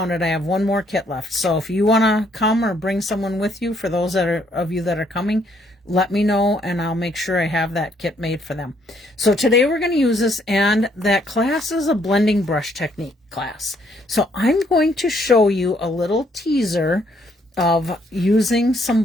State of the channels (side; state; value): both; normal; correlation 0.69